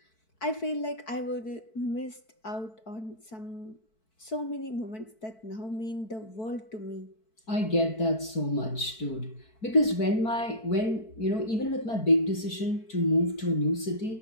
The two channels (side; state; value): right; late; 4.6 ms